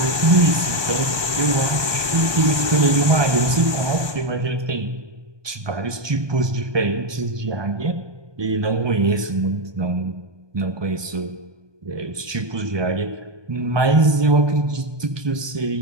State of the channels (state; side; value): late; left; 1.2 ms